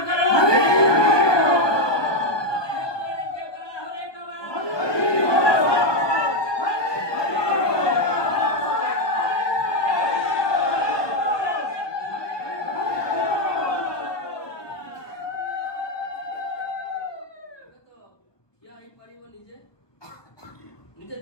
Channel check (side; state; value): right; late; 1.4 ms